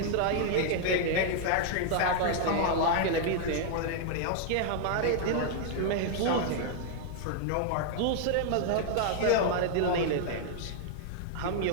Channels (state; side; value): different; both; correlation 0.00